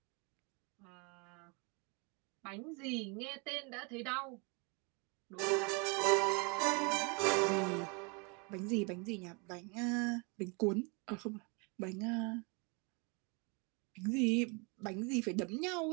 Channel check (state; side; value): quieter; left; 31.8 dB